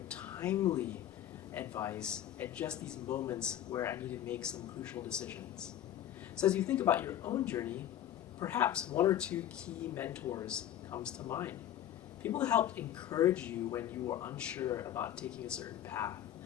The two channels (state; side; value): quieter; right; 11.4 dB